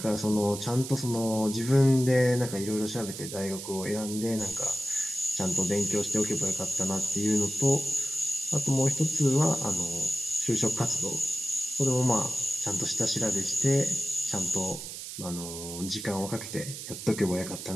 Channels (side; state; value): right; noise; hiss, 9 dB below the sound